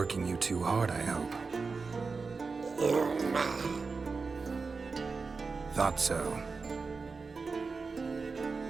you too hard, I hope. Thought so.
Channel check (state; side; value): quieter; left; 4.5 dB